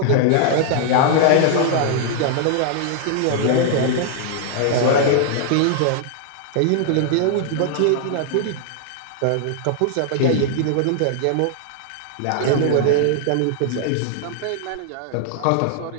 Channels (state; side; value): different; both; correlation 0.00